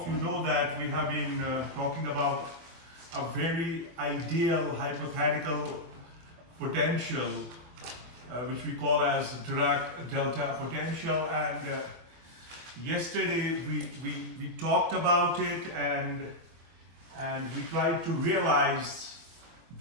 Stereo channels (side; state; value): left; late; 24 ms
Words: you know that we have been talking about a very ideal hypothetical potential which we call as Dirac Delta potential, and yesterday we talked about it and we tried to realize